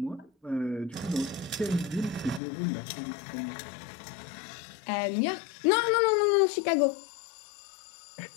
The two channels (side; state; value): right; drops out; at 2.4 s